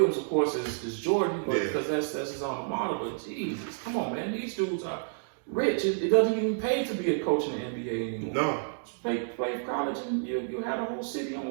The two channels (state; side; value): silent; left; digital silence